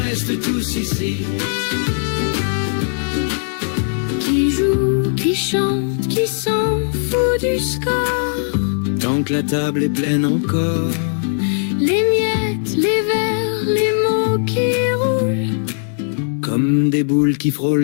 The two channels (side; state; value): right; silent; digital silence